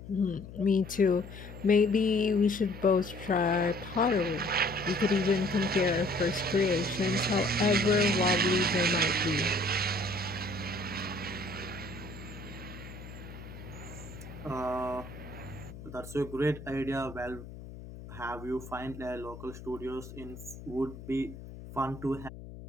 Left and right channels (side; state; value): left; noise; hum, 14 dB below the sound